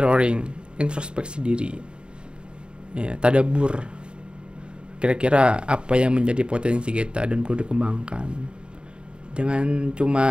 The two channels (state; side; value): late; left; 0.052 ms